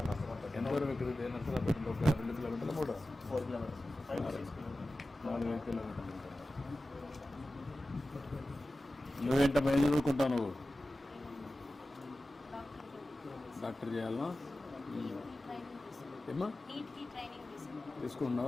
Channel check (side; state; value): both; normal; correlation 0.95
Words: ఎంత వరకు ఎక్కడ నచ్చలా పెట్టింది? ఒక 2 కిలోమీటర్లు, 4 kilometers, 4 కిలోమీటర్లు. నువ్వేంటమ్మా, ఏం చదువుకుంటావు నువ్వు? డాక్టర్ చేయాలనా? ఏమ్మా